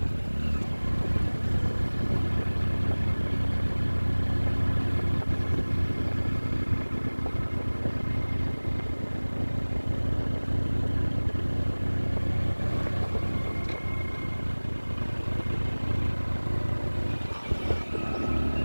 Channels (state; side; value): inverted; both; correlation -1.00